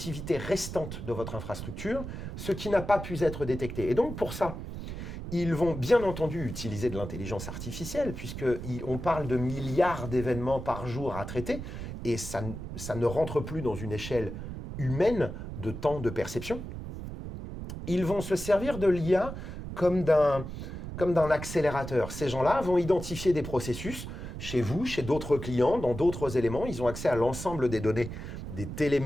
restante de votre infrastructure ce qui n'a pas pu être détecté. Et donc pour ça, ils vont bien entendu utiliser de l'intelligence artificielle, puisqu'on parle de milliards d'événements par jour à traiter, et ça ne rentre plus dans une échelle humaine de temps de perception. Ils vont se servir de l'IA comme d'un accélérateur. Ces gens-là vont identifier des processus chez vous, chez d'autres clients, dans d'autres éléments. Ils ont accès à l'ensemble des données, des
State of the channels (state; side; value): noise; right; rumble, 8 dB below the sound